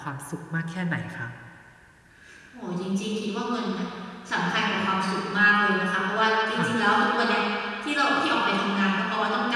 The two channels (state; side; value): identical; both; correlation 1.00